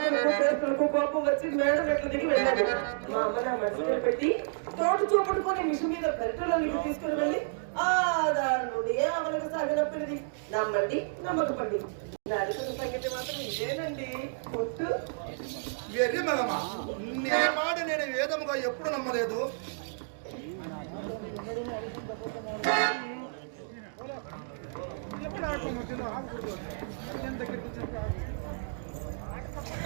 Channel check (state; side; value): silent; left; digital silence